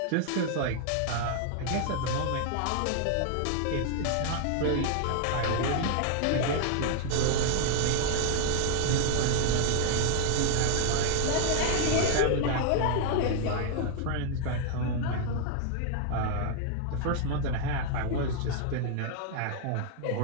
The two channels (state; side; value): different; both; correlation 0.00